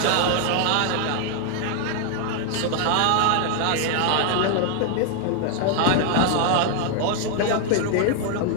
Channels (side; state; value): both; different; correlation 0.00